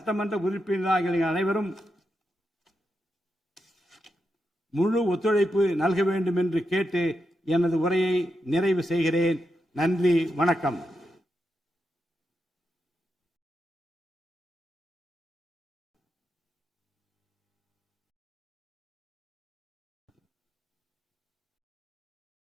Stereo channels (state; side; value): normal; both; correlation 0.86